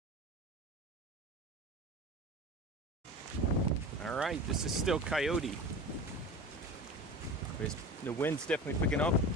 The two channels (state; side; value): normal; both; correlation 0.33